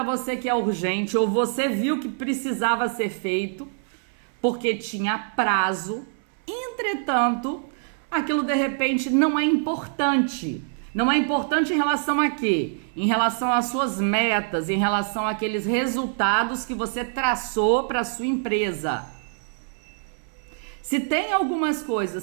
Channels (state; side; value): silent; left; 60 dB below the other